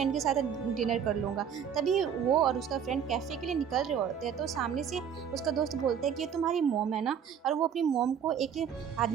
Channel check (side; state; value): left; quieter; 8.0 dB